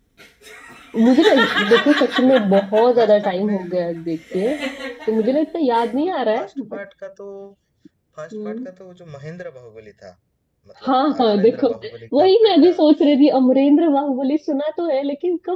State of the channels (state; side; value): identical; both; correlation 1.00